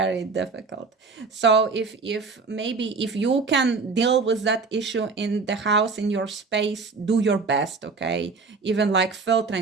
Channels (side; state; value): left; quieter; 4.5 dB